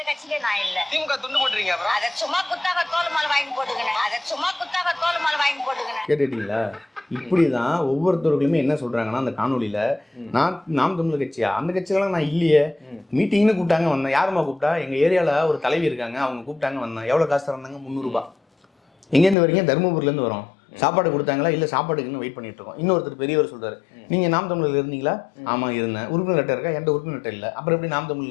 கட்சியிலயும் நான் இல்ல. திமுக துண்டு போட்டுறீங்க. அப்புறம் அத சும்மா குத்தாக தோல் மாலை வாங்கி போட்டுக்கணும். கேட்டுட்டீங்களா? இப்படிதான் ஒவ்வொருத்தவர்களுமே என்ன சொல்றாங்கன்னா அந்த காணொலியில, நாம் தமிழர் கட்சியா, அந்த கட்சியெல்லாம் நான் இல்லையே, மீட்டிங்னு கூப்பிட்டாங்க வந்தேன். யாருமா கூப்பிட்டா? எங்க ஏரியால ஒரு தலைவி இருக்காங்க, அவங்க கூப்பிட்டாங்க வந்தேன். எவ்வளவு காசு தராங்க? 300 ரூபாய். எங்கேருந்து வரீங்க? தருமபுரில இருந்து வரோம். சாப்பாடு கொடுத்தாங்களா? இல்லை, சாப்பாடுக்குன்னு வெயிட் பண்ணிட்டு இருக்கோம். இன்னொருத்தர் பெரியவர் சொல்றாரு, நீங்க நாம் தமிழர் இருந்தீங்களா? ஆமா இருந்தேன். உறுப்பினர் லெட்டர் இருக்கா? என்கிட்ட உறுப்பினர் லெட்டர் இல்லை. அப்புறம் எப்படி நாம்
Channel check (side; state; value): right; drops out; at 19.4 s